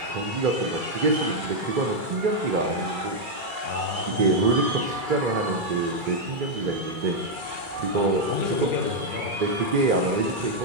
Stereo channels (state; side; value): late; left; 2.3 ms